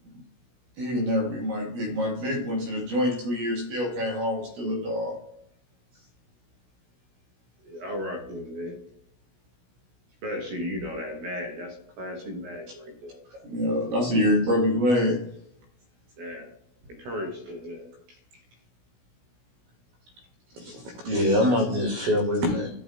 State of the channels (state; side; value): late; left; 16 ms